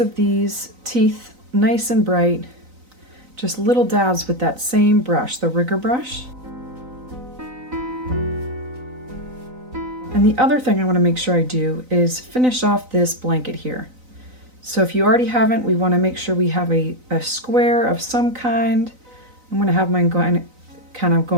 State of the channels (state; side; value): late; left; 3.9 ms